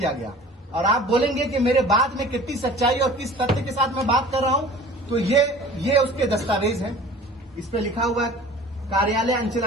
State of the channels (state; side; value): normal; both; correlation 0.44